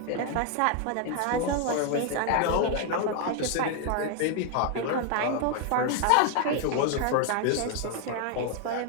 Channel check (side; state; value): both; different; correlation 0.00